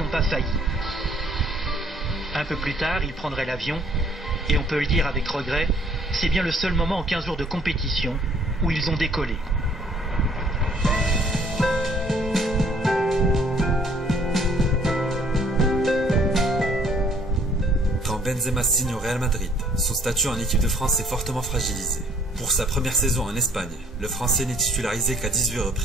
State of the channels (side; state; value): both; normal; correlation 0.61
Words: pas failli. Un peu plus tard, ils prendraient l'avion, et on peut le dire avec regret, c'est bien le seul moment en 15 jours de compétition où ils ont décollé. Quand Benzema signe au Real Madrid, son statut en équipe de France est fortement fragilisé. Pour sa première saison en Espagne, le Français n'est titularisé qu'à 18